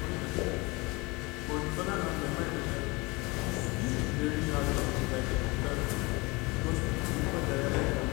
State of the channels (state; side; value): quieter; right; 25.1 dB